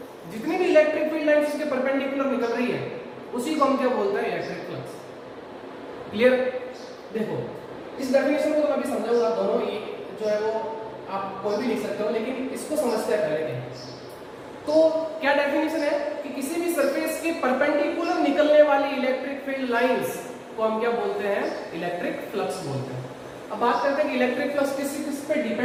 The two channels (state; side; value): identical; both; correlation 1.00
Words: जितनी भी इलेक्ट्रिक फील्ड लाइंस उसके परपेंडिकुलर निकल रही है, उसी को हम क्या बोलते हैं, इलेक्ट्रिक फ्लक्स। क्लियर? देखो इस डेफिनेशन को तो मैं अभी समझाऊंगा, दोनों ही जो है वो आप कोई भी लिख सकते हो, लेकिन इसको समझते हैं पहले क्या। तो क्या डेफिनेशन है कि किसी भी सरफेस के परपेंडिकुलर निकलने वाली इलेक्ट्रिक फील्ड लाइंस को हम क्या बोलते हैं, इलेक्ट्रिक फ्लक्स बोलते हैं। अब बात करते हैं कि इलेक्ट्रिक फ्लक्स किस पे